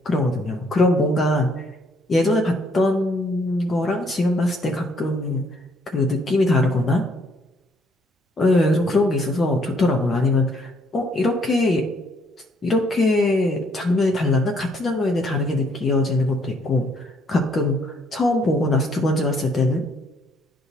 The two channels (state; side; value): normal; both; correlation 0.67